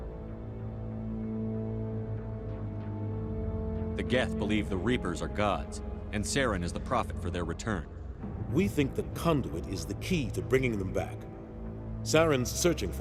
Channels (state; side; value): identical; both; correlation 1.00